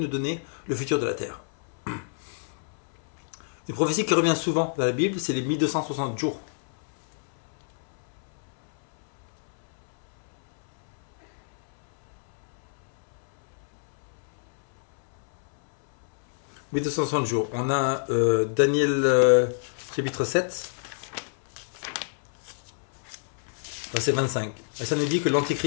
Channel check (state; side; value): silent; right; 60 dB below the other